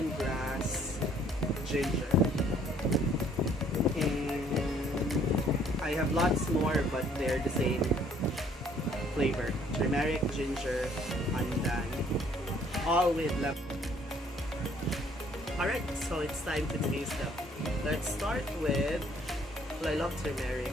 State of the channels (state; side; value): normal; both; correlation 0.61